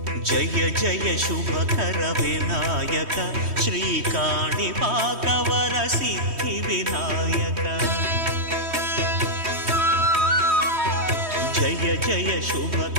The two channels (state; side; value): late; left; 3.1 ms